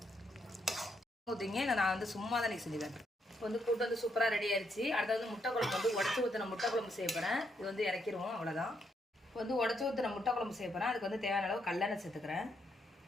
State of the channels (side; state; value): both; normal; correlation 0.77